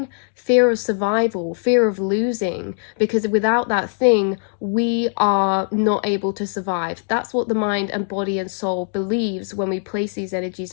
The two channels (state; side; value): silent; right; digital silence